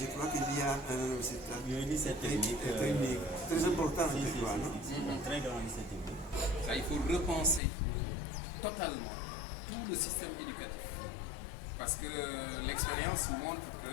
crois qu'il y a un université technique. Très important, je crois, non? Un très grand lycée technique. Ça, il faut repenser totalement tout le système éducatif. Parce que l'expérience montre que,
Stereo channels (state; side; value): drops out; right; at 7.6 s